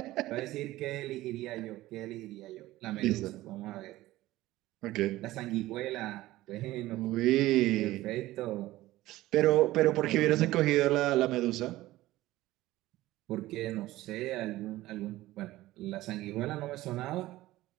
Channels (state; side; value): quieter; left; 16.8 dB